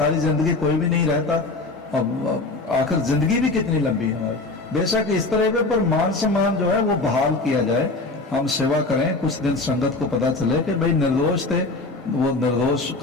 जिंदगी कोई भी नहीं रहता। अब आखिर जिंदगी भी कितनी लंबी है हमारी। बेशक इस तरह के पर मान सम्मान जो है वो बहाल किया जाए, हम सेवा करें। कुछ दिन संगत को पता चले कि भाई निर्दोष थे, वो निर्दोष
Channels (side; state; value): right; quieter; 3.3 dB